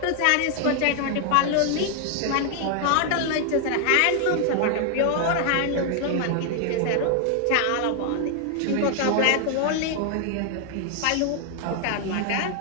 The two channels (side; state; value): both; different; correlation 0.00